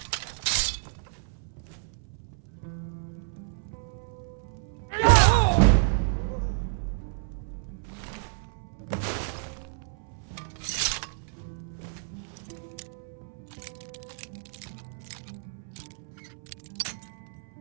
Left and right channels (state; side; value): silent; left; 58 dB below the other